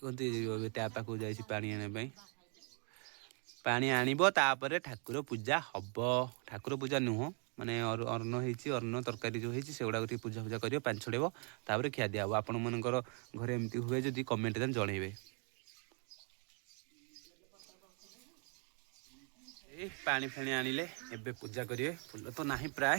पाक जा पानी आने पानी आनिबो तापर ठाकुर पूजा हब ठाकुर पूजा नुह माने अर्ण अर्ण तरकारी जो होती से गुड़ा पूजा पूजा कर पानी छड़ेब तापर खिया दिया आपण मनकर घरे एमती हुए जदि कमेंट जनइबे पानी फाणी आनिले एबे पूजा करिए फुल तो नाही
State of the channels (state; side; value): quieter; left; 38.3 dB